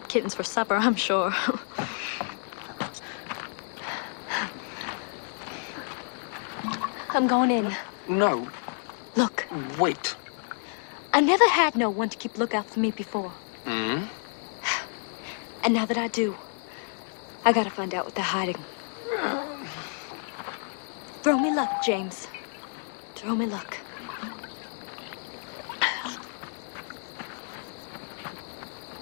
kittens for supper, I'm sure. I'm going in. No. Look, Wait. I never had no one to keep lookout for me before. Hmm? And now that I do, I gotta find out what they're hiding. Throw me luck, James. Throw me luck.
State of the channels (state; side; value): silent; right; 55 dB below the other